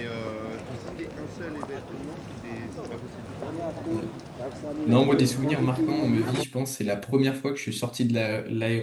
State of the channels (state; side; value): identical; both; correlation 1.00